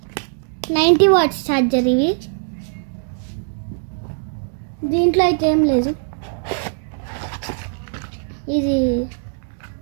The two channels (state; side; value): silent; left; digital silence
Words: వాట్స్ ఛార్జర్. ఇవి దీంట్లో అయితే ఏం లేదు. ఇది